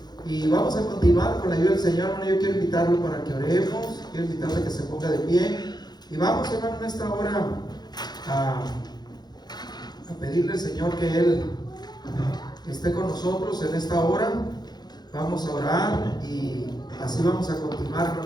y vamos a continuar con la ayuda del Señor. Hermano, yo quiero invitarlo para que oremos, quiero invitarle a que se ponga de pie y vamos, hermano, en esta hora a pedirle al Señor que Él esté con nosotros en esta hora. Vamos a orar y así vamos a continuar,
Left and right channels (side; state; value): right; late; 0.20 ms